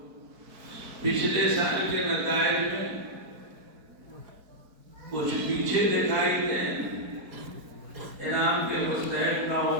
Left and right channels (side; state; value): left; late; 4.5 ms